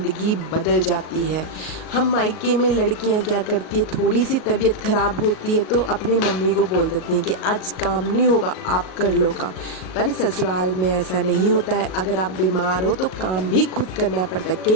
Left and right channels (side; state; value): right; late; 38 ms